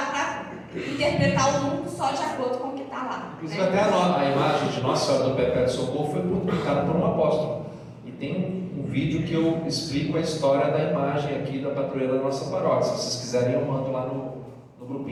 interpretar o mundo só de acordo com o que está lá. Inclusive né? até a imagem de Nossa Senhora do Perpétuo Socorro foi publicada por um apóstolo. E tem um vídeo que eu explico a história da imagem aqui da padroeira da nossa paróquia. Se vocês quiserem, eu mando lá no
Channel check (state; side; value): identical; both; correlation 1.00